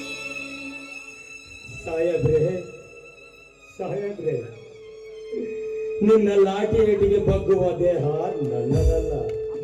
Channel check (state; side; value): identical; both; correlation 1.00